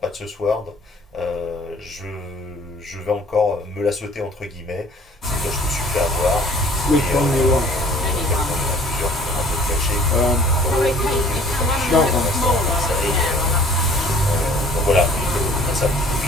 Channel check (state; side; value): normal; both; correlation 0.53